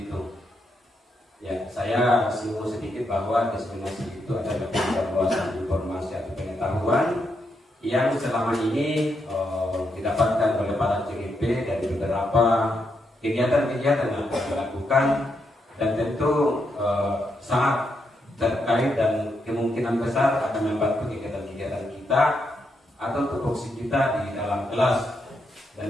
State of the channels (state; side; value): normal; both; correlation 0.81